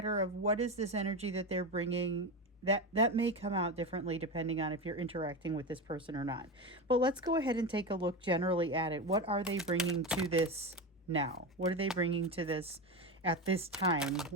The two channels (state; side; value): normal; both; correlation 0.19